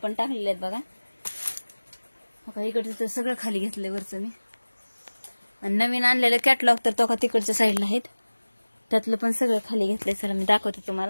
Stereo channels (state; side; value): inverted; both; correlation -1.00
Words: टाकलेले आहेत बघा. इकडचं तर सगळं खाली घेतलंय वरचं मी. आणि नवीन आणलेलं कॅटलॉग तर तो का तिकडच्या साईडला आहेत, त्यातलं पण सगळं खाली घेतलंय. चला मी दाखवते